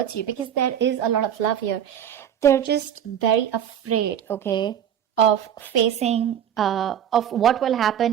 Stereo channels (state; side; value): quieter; left; 9.6 dB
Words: you, because there is a lot of love here. They're just very afraid, okay, of facing, of what will